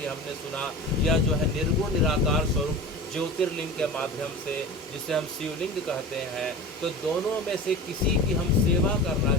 हमने सुना, या जो है निर्गुण निराकार स्वरूप ज्योतिर्लिंग के माध्यम से जिसे हम शिवलिंग कहते हैं। तो दोनों में से किसी की हम सेवा करना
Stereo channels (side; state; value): both; normal; correlation 0.33